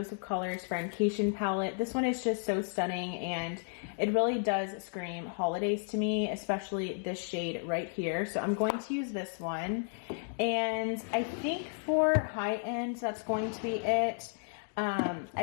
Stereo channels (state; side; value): silent; right; 56 dB below the other